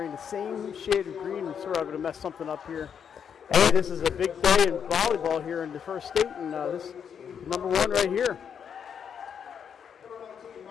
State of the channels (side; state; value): right; quieter; 7.6 dB